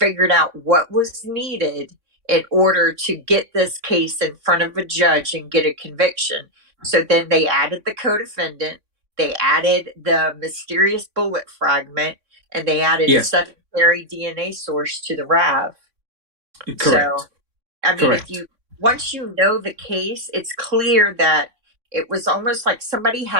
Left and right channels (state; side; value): late; left; 3.6 ms